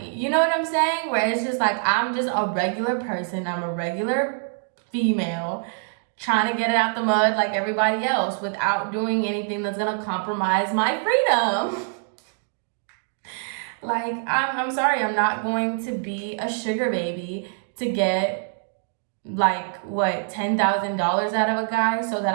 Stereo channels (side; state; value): left; silent; 62 dB below the other